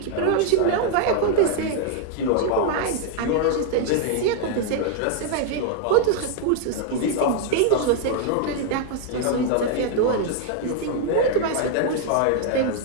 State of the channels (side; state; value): both; different; correlation 0.00